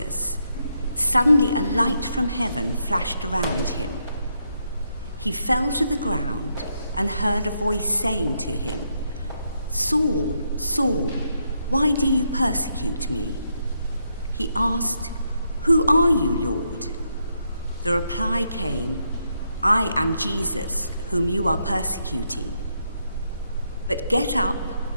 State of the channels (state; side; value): inverted; both; correlation -0.79